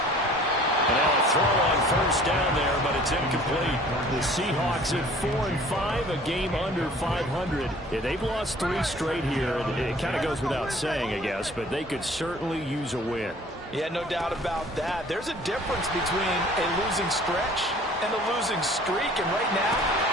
And now a throw on 1st down there, but it's incomplete. The Seahawks at 4-5, a game under 500. Yeah, they've lost 3 straight here. It kind of goes without saying, I guess, but they could certainly use a win. Yeah, no doubt about that. There's a difference between a losing stretch and a losing streak, and right now,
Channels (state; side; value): normal; both; correlation 0.51